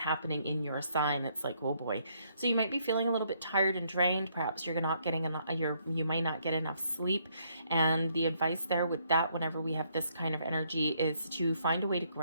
in your sign, it's like, oh boy. So you might be feeling a little bit tired and drained. Perhaps you're not getting enough, you might not get enough sleep. And the advice there with that, whenever we have this kind of energy, is to find a way to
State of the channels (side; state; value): both; inverted; correlation -0.71